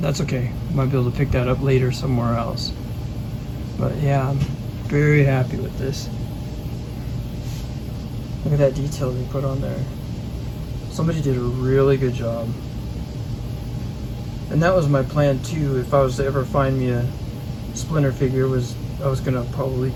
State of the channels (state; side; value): identical; both; correlation 1.00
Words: that's okay. Might be able to pick that up later somewhere else. But yeah, I'm very happy with this. Look at that detail they put on there. Somebody did a really good job. And that was my plan too. If I was to ever find me a Splinter figure, I was gonna probably